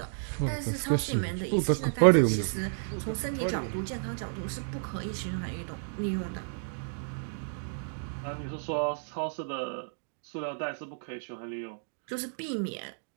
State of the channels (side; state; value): left; silent; digital silence